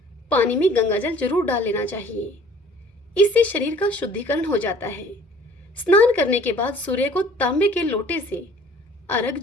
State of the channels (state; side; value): normal; both; correlation 0.52